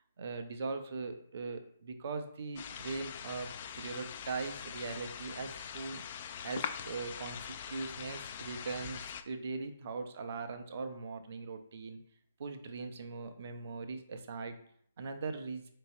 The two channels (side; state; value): both; inverted; correlation -0.71